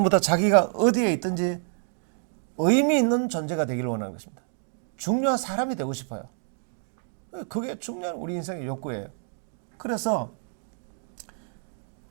다 자기가 어디에 있든지 의미 있는 존재가 되기를 원하는 것입니다. 중요한 사람이 되고 싶어요. 그게 중요한 우리 인생의 욕구예요. 그래서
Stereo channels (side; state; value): left; silent; 58 dB below the other